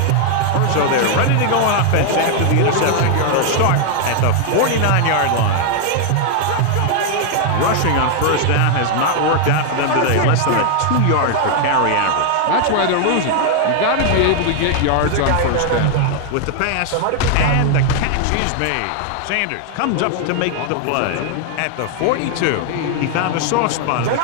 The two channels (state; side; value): different; both; correlation 0.00